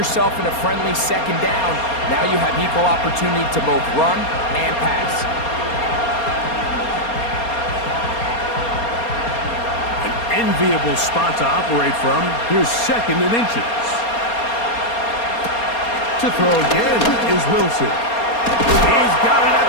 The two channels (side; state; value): right; late; 4.3 ms